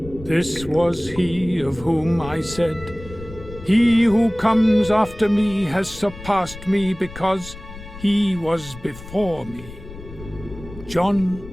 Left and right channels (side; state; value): left; noise; rumble, 15 dB below the sound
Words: This was he of whom I said, He who comes after me has surpassed me because he was before me. John